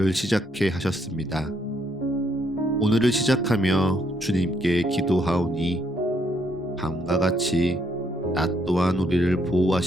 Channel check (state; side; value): normal; both; correlation 0.72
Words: 시작해 하셨습니다. 오늘을 시작하며 주님께 기도하오니 밤과 같이 낮 또한 우리를